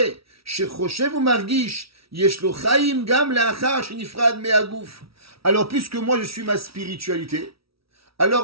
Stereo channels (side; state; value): left; late; 0.76 ms